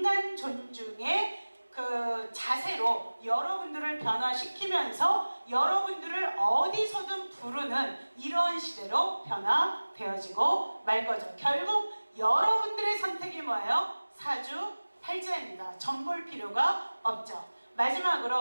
존중의 그 자세로 여러분들을 변화시키면서 여러분들을 어디서든 부르는 이러한 시대로 변화되어지고 말 거죠. 결국 여러분들의 선택이 뭐예요? 사주팔자입니다. 점볼 필요가 없죠.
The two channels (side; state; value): both; inverted; correlation -1.00